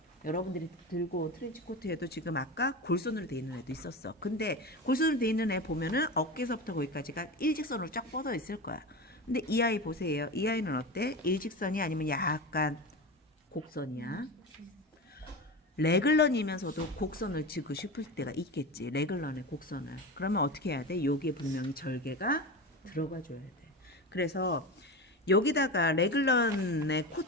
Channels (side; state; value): both; normal; correlation 0.24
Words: 여러분들이 들고 온 트렌치 코트에도 지금 아까 골선으로 되어 있는 애도 있었어. 근데 골선으로 되어 있는 애 보면은 어깨에서부터 거기까지가 일직선으로 쫙 뻗어 있을 거야. 근데 이 아이 보세요. 이 아이는 어때? 일직선이 아니면 약간 곡선이야. 레글런이면서도 곡선을 지고 싶을 때가 있겠지. 레글런의 곡선을. 그러면 어떻게 해야 돼? 여기에 분명히 절개가 들어가 줘야 돼. 그래서 여기다가 레글런의